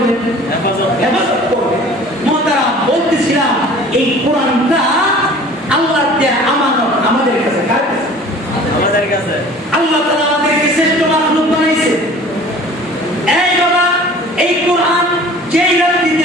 হেফাজত করবেন। মোহতারাম, বলতেছিলাম এই কোরআনটা আল্লাহর দেয়া আমানত আমাদের কাছে। কার কাছে? আমাদের কাছে। আল্লাহ তাআলা আমাদেরকে শ্রেষ্ঠ মাখলুক বানাইছে। এই বাবা, এই কোরআন যেই রাত্রিতে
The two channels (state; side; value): normal; both; correlation 0.46